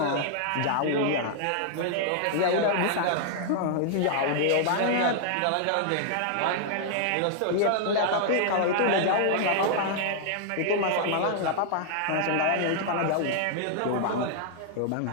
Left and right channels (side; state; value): both; different; correlation 0.00